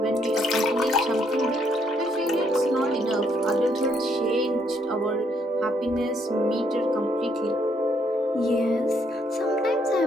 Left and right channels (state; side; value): normal; both; correlation 0.71